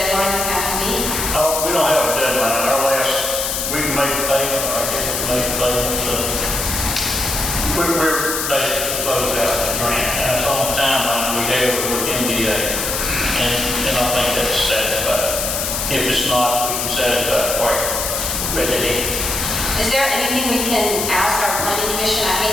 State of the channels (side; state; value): left; noise; hiss, 1 dB below the sound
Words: we have to meet? We don't have a deadline. We can make a payment, or I guess we make a payment. We're basically closed out the grant. And that's on the timeline we have with MDA. And I think that's satisfied. If it's not, we can satisfy it quite readily. Is there anything we can ask our planning commission? I